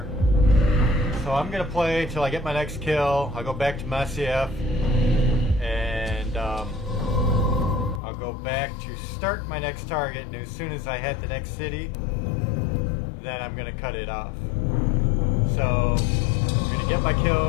So I'm gonna play till I get my next kill. I'll go back to Masyaf, and I'll go back to start my next target, and as soon as I hit the next city, then I'm gonna cut it off. So I'm gonna get my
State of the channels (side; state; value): right; drops out; at 8.0 s